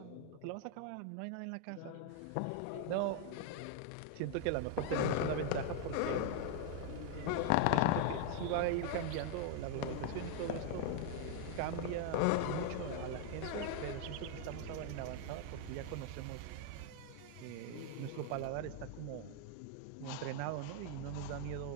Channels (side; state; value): both; different; correlation 0.00